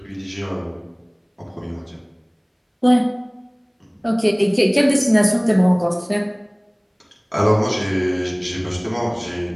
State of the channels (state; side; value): identical; both; correlation 1.00